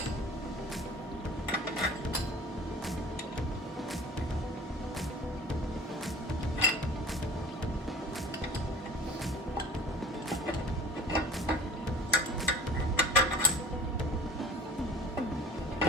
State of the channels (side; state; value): both; normal; correlation 0.43